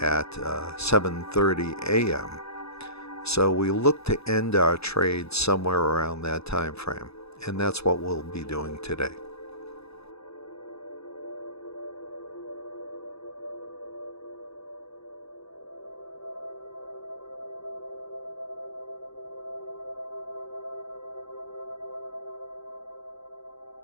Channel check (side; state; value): right; late; 0.79 ms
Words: at 7:30 a.m. So we look to end our trade somewhere around that time frame, and that's what we'll be doing today.